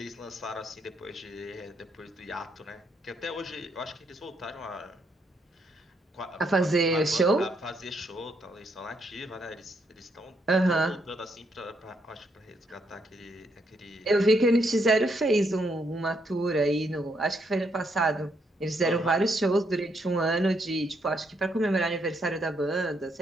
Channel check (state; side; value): normal; both; correlation 0.75